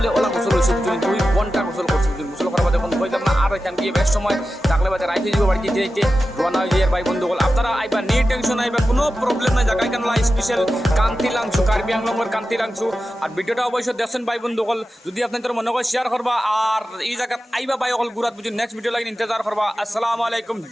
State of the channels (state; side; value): normal; both; correlation 0.93